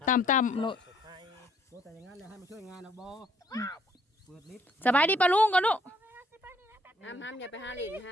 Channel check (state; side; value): normal; both; correlation 0.66